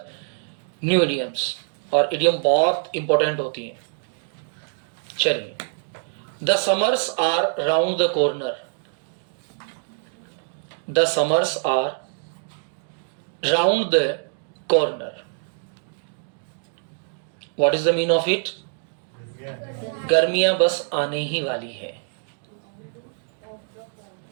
न्यू इडियम्स, और इडियम बहुत इंपॉर्टेंट होती है. चलिए, the summers are round the corner. The summers are round the corner. What is the mean of it? गर्मियां बस आने ही वाली है.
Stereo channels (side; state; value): left; silent; digital silence